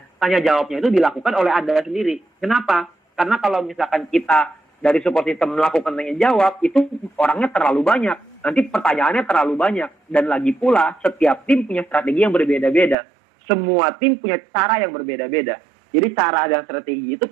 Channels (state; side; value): drops out; left; at 13.0 s